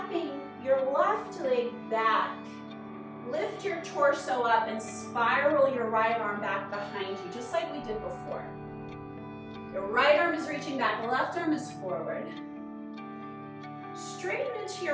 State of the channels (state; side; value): identical; both; correlation 1.00